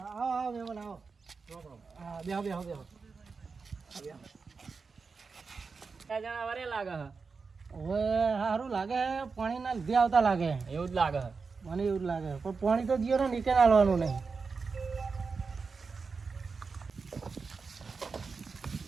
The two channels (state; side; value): quieter; left; 4.8 dB